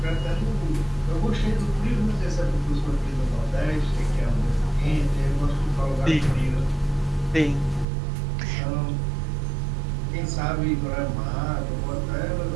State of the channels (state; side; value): drops out; left; at 7.9 s